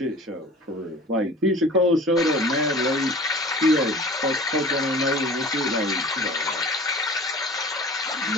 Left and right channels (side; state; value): both; normal; correlation 0.42